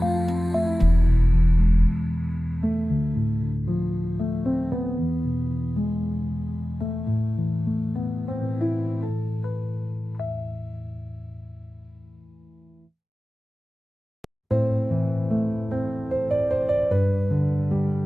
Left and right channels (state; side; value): normal; both; correlation 0.95